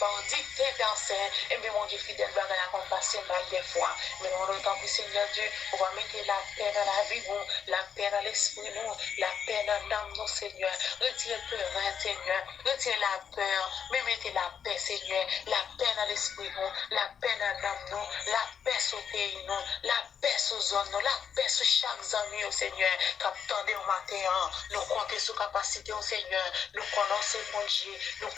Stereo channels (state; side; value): quieter; right; 7.5 dB